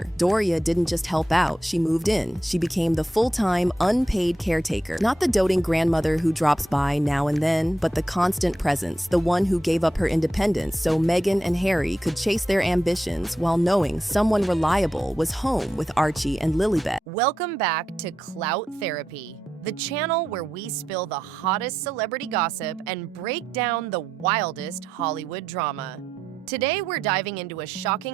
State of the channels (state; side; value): normal; both; correlation 0.85